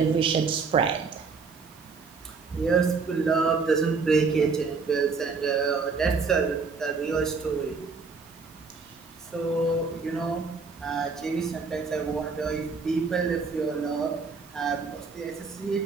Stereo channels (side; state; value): left; quieter; 4.8 dB